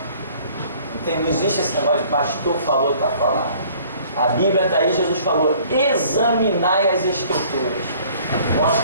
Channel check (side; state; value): both; inverted; correlation -0.55